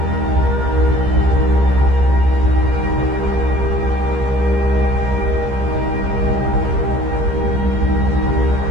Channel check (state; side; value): late; left; 15 ms